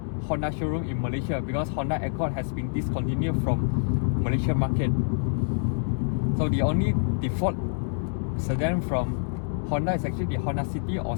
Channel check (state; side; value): silent; right; digital silence